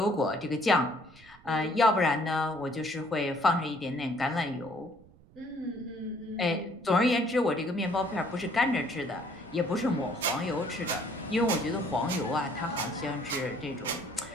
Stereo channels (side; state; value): right; noise; rumble, 25 dB below the sound